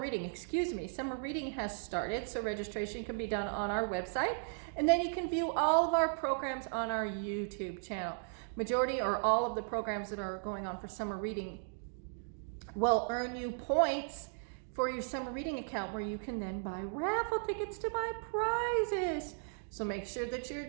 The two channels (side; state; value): left; silent; digital silence